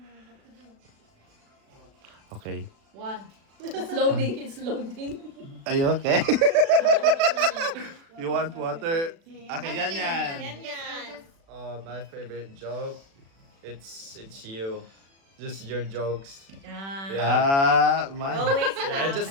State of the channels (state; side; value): late; left; 36 ms